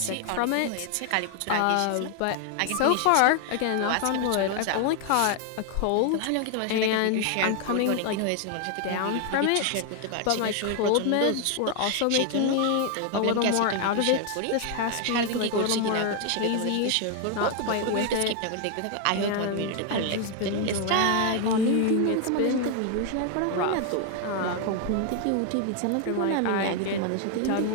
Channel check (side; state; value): both; different; correlation 0.00